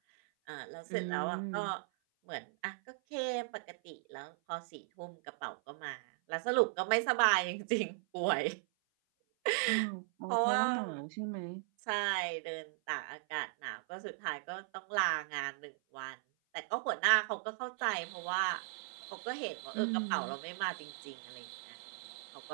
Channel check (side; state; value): left; silent; 53 dB below the other